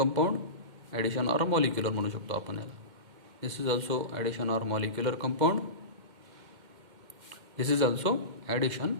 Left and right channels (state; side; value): late; left; 2.1 ms